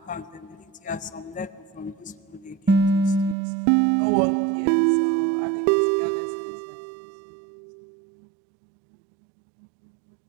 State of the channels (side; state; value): left; drops out; at 3.4 s